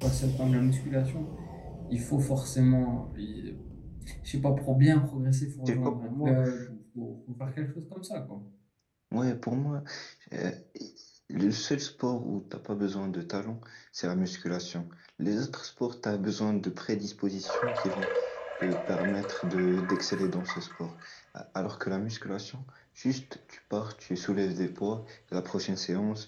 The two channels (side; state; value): both; identical; correlation 1.00